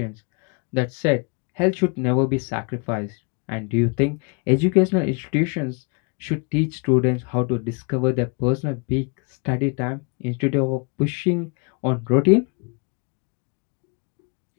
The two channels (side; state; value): right; quieter; 34.4 dB